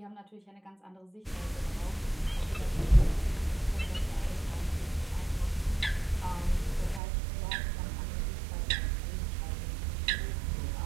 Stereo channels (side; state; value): left; drops out; at 7.0 s